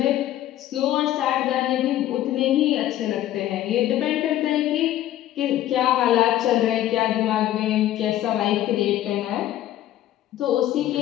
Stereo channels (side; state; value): right; quieter; 13.2 dB